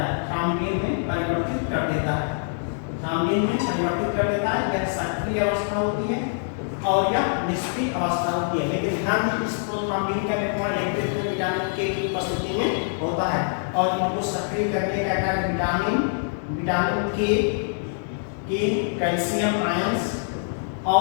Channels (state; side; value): silent; right; digital silence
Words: थ्रोम्बिन में परिवर्तित कर देता है। यह सक्रिय अवस्था होती है और यह निष्क्रिय अवस्था होती है। लेकिन ध्यान दीजिए, इस प्रोथ्रोम्बिन का निर्माण विटामिन के की उपस्थिति में होता है और इनको सक्रिय करने का कार्य विटामिन के कैल्शियम आयंस